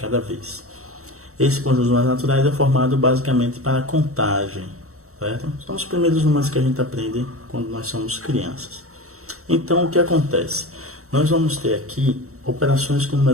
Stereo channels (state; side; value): late; left; 0.64 ms